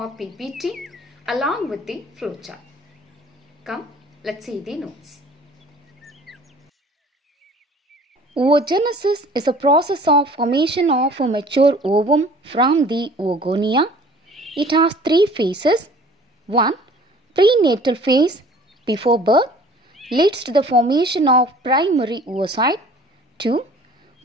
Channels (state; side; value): normal; both; correlation 0.49